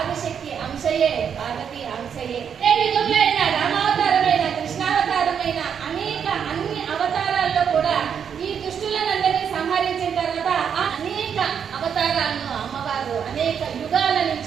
అంశయే, పార్వతి అంశయే. ఏ యుగంలో అయినా రామావతారమైన, కృష్ణావతారమైన అన్ని అవతారాల్లో కూడా ఈ దుష్టులనందరినీ సంహరించిన తర్వాత ఆ అనేక అవతారాలను అమ్మవారు అనేక యుగాల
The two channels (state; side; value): quieter; left; 7.6 dB